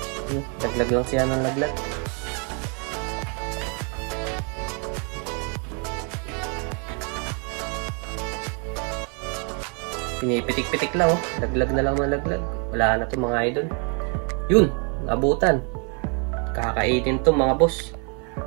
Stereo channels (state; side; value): quieter; left; 37.1 dB